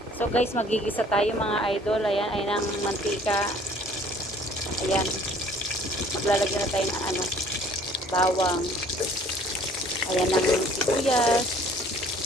So guys, magigisa tayo mga idol. Ayan, ayan ang mantika. Ayan, maglalagyan na tayo ng bawang. Ayan ang sibuyas.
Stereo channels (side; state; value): both; normal; correlation 0.55